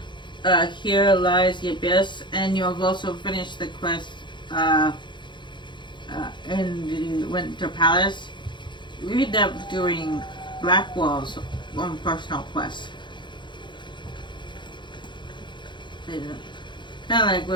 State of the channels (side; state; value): right; late; 0.23 ms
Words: here lies the abyss, and you have also finished the quest in the Winter Palace. We end up doing Blackwall's own personal quest. Kind of like